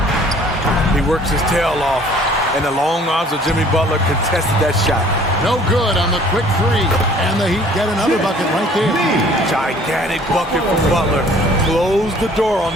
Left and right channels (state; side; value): normal; both; correlation 0.54